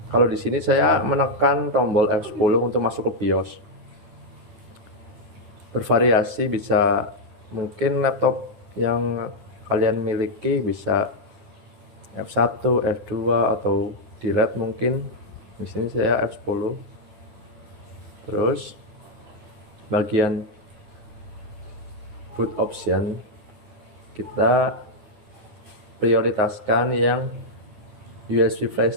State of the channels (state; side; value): late; left; 9.5 ms